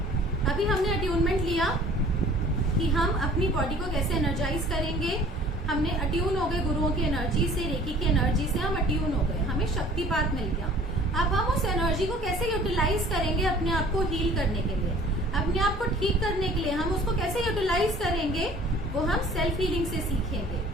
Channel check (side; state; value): both; normal; correlation 0.51